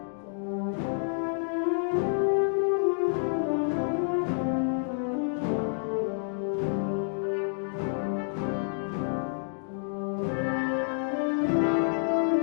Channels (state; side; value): silent; right; digital silence